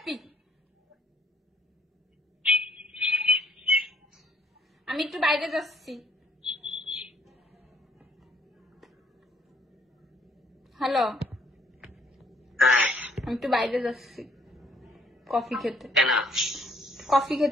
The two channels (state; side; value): normal; both; correlation 0.63